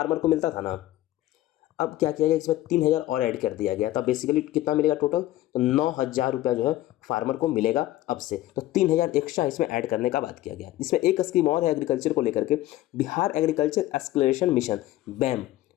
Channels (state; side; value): quieter; right; 15.3 dB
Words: को मिलता था ना, अब क्या किया गया इसमें 3,000 और ऐड कर दिया गया। तब बेसिकली कितना मिलेगा टोटल? तो 9,000 रुपया जो है फार्मर को मिलेगा अब से, तो 3,000 एक्स्ट्रा इसमें ऐड करने का बात किया गया। इसमें एक स्कीम और है एग्रीकल्चर को लेकर के, Bihar agriculture exploration mission, BAM,